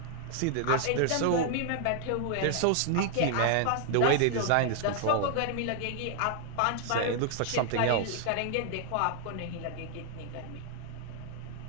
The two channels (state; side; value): different; both; correlation 0.00